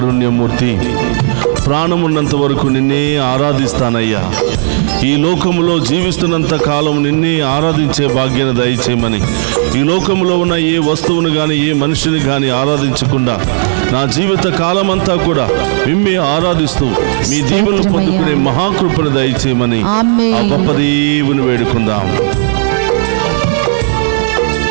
ప్రాణమున్నంత వరకు నిన్నే ఆరాధిస్తానయ్యా. ఈ లోకములో జీవిస్తున్నంత కాలం నిన్నే ఆరాధించే భాగ్యాన్ని దయచేయమని, ఈ లోకంలో ఉన్న ఏ వస్తువును కానీ ఏ మనిషిని కానీ ఆరాధించకుండా నా జీవిత కాలమంతా కూడా మిమ్మే ఆరాధిస్తూ మీ దీవులు పొందుకునే మహాకృపను దయచేయమని ఆ గొప్ప దేవుని వేడుకుందాం.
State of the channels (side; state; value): left; silent; digital silence